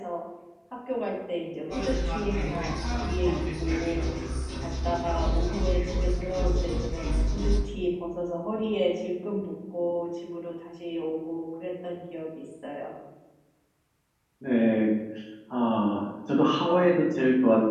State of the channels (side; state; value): both; identical; correlation 1.00